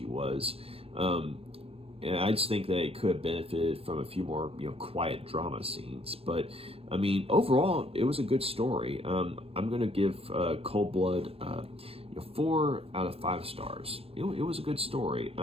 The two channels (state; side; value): late; left; 0.28 ms